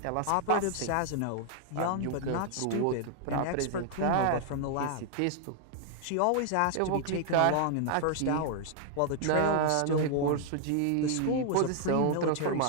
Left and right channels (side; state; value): both; different; correlation 0.00